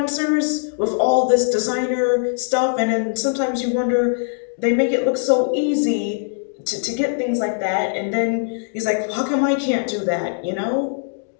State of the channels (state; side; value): silent; right; digital silence